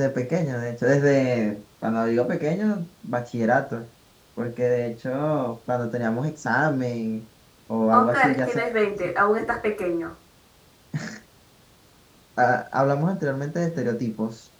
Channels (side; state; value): both; identical; correlation 1.00